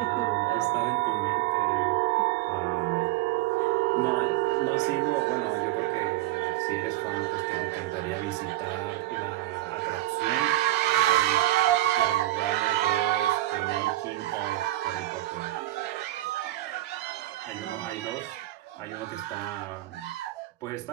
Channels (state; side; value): quieter; left; 16.5 dB